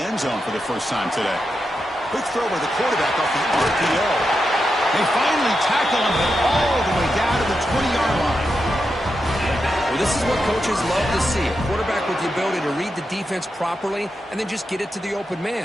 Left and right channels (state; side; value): normal; both; correlation 0.87